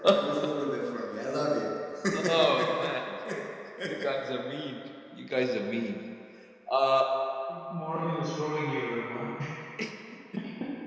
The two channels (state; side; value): identical; both; correlation 1.00